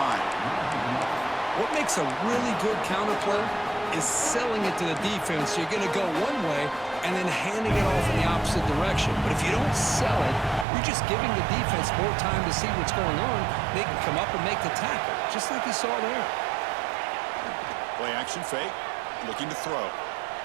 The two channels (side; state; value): left; drops out; at 10.7 s